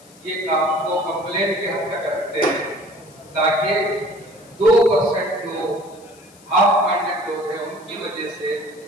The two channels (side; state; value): left; noise; hiss, 26 dB below the sound